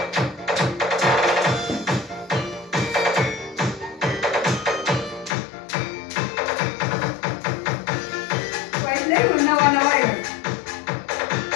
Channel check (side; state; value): right; drops out; at 5.4 s